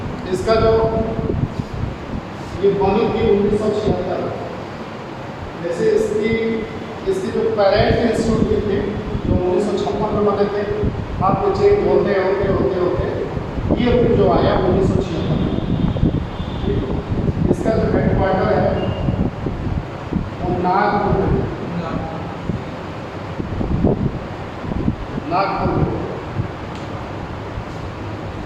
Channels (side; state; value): both; identical; correlation 1.00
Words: इसका जो ये बनी थी 1976, जैसे इसकी जो पेरेंट इंस्टीट्यूट थे जो 1956 में बने थे, आपको चेंज होते ये जो आया 1976 में। इसका जो हेडक्वार्टर है वो नागपुर में, नागपुर में।